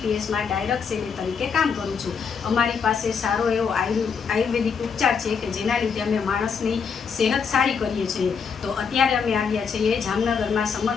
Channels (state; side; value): quieter; right; 6.1 dB